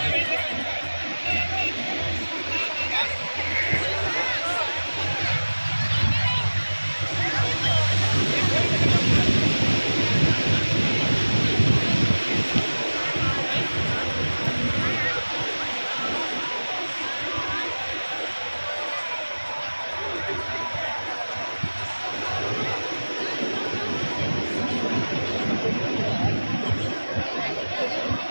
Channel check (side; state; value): both; inverted; correlation -1.00